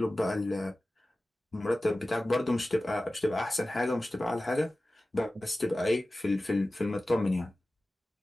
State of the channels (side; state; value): both; normal; correlation 0.96